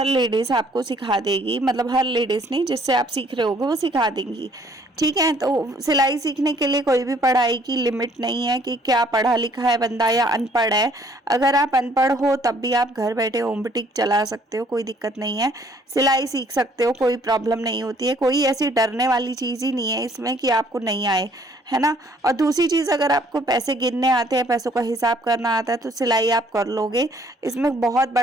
लेडीज आपको सिखा देगी, मतलब हर लेडीज नहीं, जिससे आप सीख रहे होगे वो सिखा देंगी। ठीक है, तो सिलाई सीखने के लिए कोई भी पढ़ाई की लिमिट नहीं है कि क्या पढ़ा लिखा है बंदा या अनपढ़ है। अगर आप अनपढ़ हो तब भी आप घर बैठे होम बुटीक चला सकते हो, कोई दिक्कत नहीं है। सिलाई सीख सकते हो, कोई प्रॉब्लम नहीं होती है। कोई ऐसी डरने वाली चीज़ ही नहीं है इसमें कि आपको नहीं आए, है ना। और दूसरी चीज़, अगर आपको पैसे गिनने आते हैं, पैसों का हिसाब करना आता है, तो सिलाई आप कर लोगे। इसमें बहुत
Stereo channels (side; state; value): both; normal; correlation 0.61